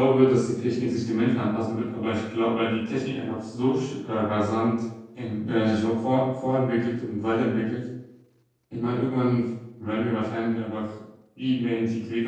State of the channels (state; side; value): identical; both; correlation 1.00